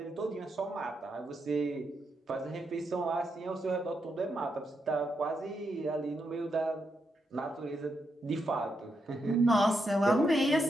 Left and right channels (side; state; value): both; normal; correlation 0.82